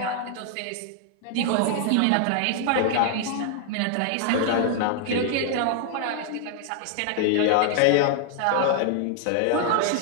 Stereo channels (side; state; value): both; different; correlation 0.00